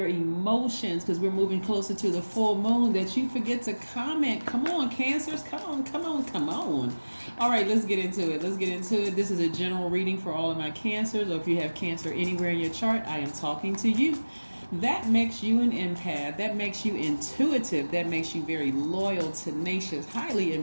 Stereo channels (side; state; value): both; inverted; correlation -1.00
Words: emotions, because we're moving closer to the full moon, that you forget to comment. Come on, Cancers. Come on. All right, let's get into it. This is a general reading for all of my Cancers, or if you have Cancer anywhere in your chart, I am talking to you. That makes you an empath. That makes you intuitive. That makes you very loyal, tenacious, highly